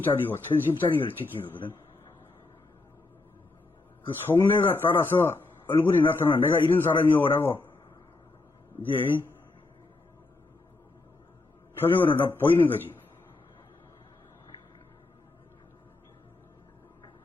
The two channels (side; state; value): right; quieter; 3.3 dB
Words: 천심짜리를 지키는 거거든. 그 속내가 따라서 얼굴이 나타나 내가 이런 사람이요라고 이제 표정으로 나 보이는 거지.